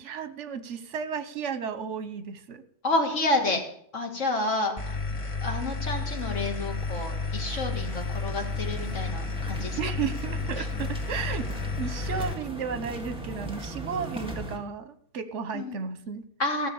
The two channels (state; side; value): normal; both; correlation 0.17